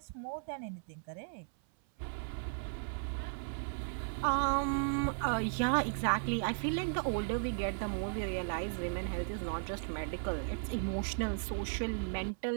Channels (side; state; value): left; silent; 54 dB below the other